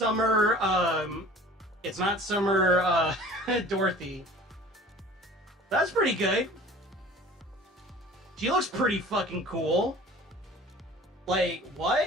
It's not Summer, Dorothy. That's pretty good. She looks pretty fucking cool. Like,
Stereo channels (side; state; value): both; normal; correlation 0.45